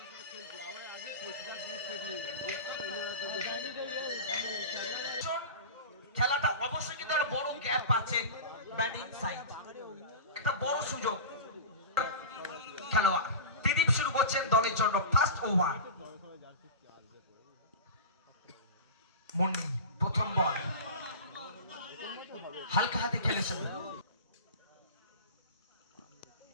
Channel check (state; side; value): inverted; both; correlation -0.31